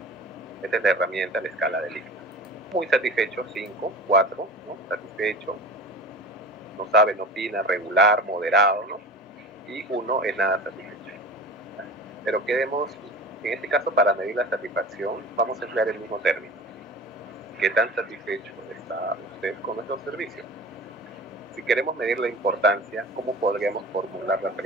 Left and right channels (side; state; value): both; normal; correlation 0.35